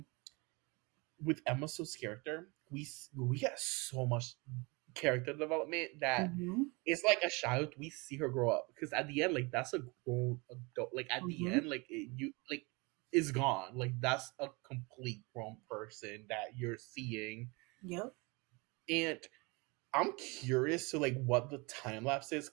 with Emma Stone's character, we get so much character development that Mm-hmm. it's like a child. We see her grow up because at the end, like that's a grown adult. Like at the Mm-hmm. end, like you like is gone. Like that's a complete grown person that you're seeing. Yep. And I'm curious to like what the time lapse is,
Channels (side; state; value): left; quieter; 27.4 dB